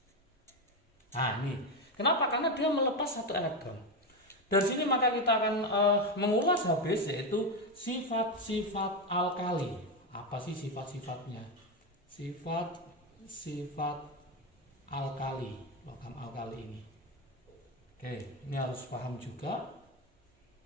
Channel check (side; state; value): both; normal; correlation 0.11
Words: Nah ini, kenapa? Karena dia melepas satu elektron. Dari sini maka kita akan mengulas habis, yaitu sifat-sifat alkali. Apa sih sifat-sifatnya? Sifat-sifat alkali, logam alkali ini. Oke, ini harus paham juga.